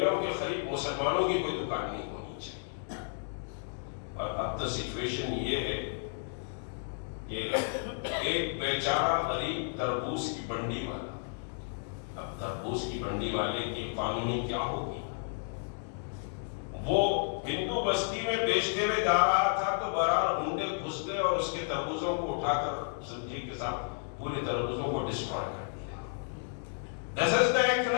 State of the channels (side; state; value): right; silent; digital silence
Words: کے قریب مسلمانوں کی کوئی دکان نہیں ہونی چاہیے. اور اب تو سچویشن یہ ہے کہ ایک بیچارہ غریب تربوز کی بنڈی والا، اب تربوز کی بنڈی والے کی اکانومی کیا ہوگی؟ وہ ہندو بستی میں بیچتے ہوئے جا رہا تھا تو بہرحال ہنڈے گھس گئے اور اس کے تربوزوں کو اٹھا کر سمجھیے کے ساتھ پورے تربوزوں کو ڈسٹرائے کر دیا. This is the